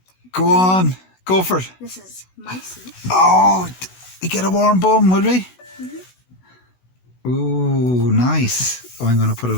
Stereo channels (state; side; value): late; right; 16 ms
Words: Go on, go for it. This is my seat. Oh, we get a warm bum, would we? Ooh, nice. Oh, I'm going to put